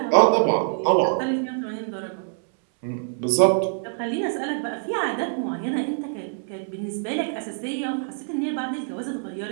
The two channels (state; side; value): silent; left; 62 dB below the other